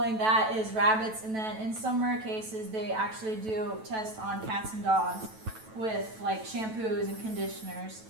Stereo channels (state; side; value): late; left; 9.2 ms